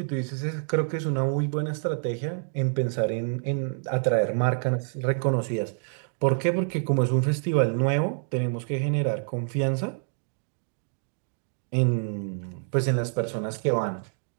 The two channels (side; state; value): left; silent; 60 dB below the other